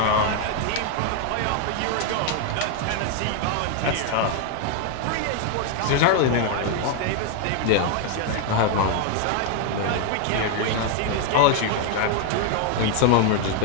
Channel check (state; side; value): different; both; correlation 0.00